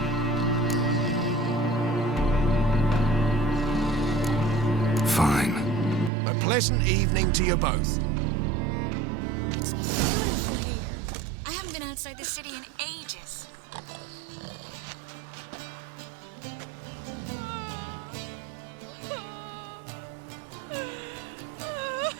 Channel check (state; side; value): drops out; left; at 6.1 s